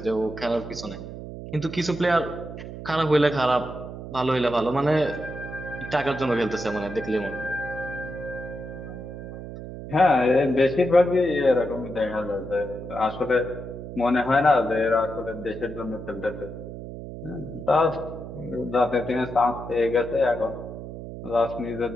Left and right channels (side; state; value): right; noise; hum, 10 dB below the sound